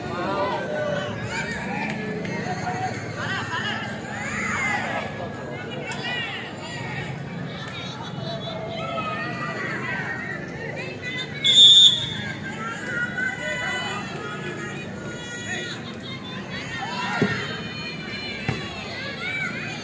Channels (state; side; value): identical; both; correlation 1.00